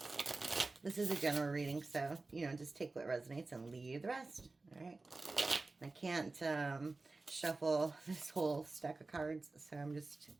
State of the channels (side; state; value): left; quieter; 3.5 dB